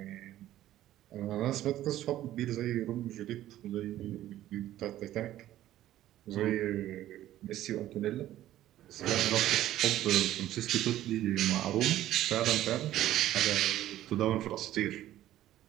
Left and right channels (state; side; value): quieter; left; 13.5 dB